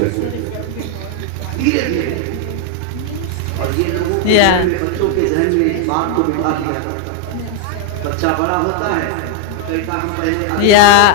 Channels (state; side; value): different; both; correlation 0.00